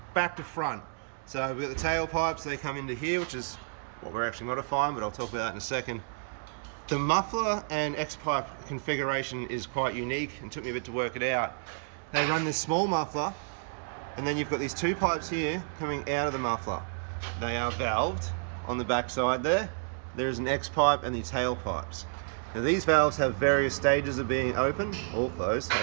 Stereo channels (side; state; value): left; silent; digital silence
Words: back to front. So we've got the tailpipes, they come into here, which is what we're actually modifying, but I'll talk about that in a second. The muffler and X-pipe configuration is quite unique and took me a bit to work it out. They run this small muffler, and then you've got these two pipes here coming out of the muffler. They are valved on the back side there. There's an X-pipe and the tailpipes. Now these valves have various stages of being open or closed,